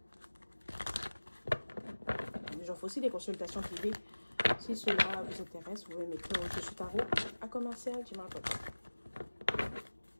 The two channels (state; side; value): inverted; both; correlation -1.00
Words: J'offre aussi des consultations privées. Si cela vous intéresse, vous pouvez m'écrire je suis Tarot à commercial@gmail.com.